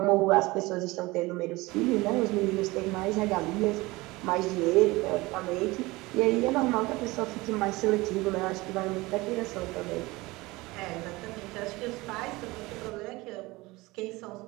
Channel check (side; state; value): left; quieter; 21.5 dB